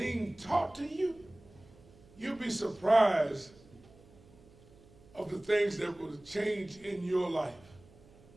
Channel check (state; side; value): noise; right; hum, 25 dB below the sound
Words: taught to you, you'll be surprised of the things that will change in your life.